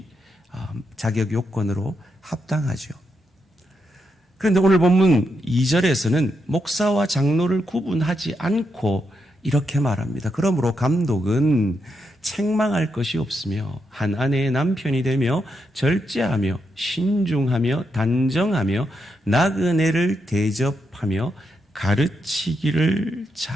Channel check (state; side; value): normal; both; correlation 0.82